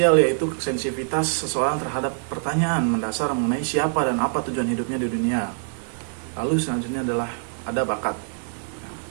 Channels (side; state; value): left; silent; digital silence